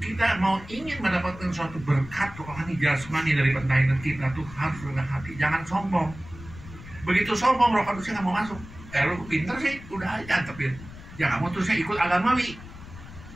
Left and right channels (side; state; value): left; noise; rumble, 16 dB below the sound